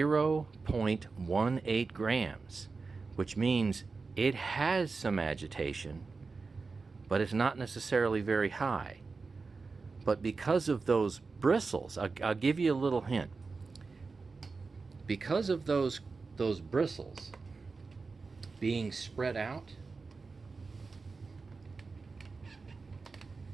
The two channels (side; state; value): left; quieter; 4.3 dB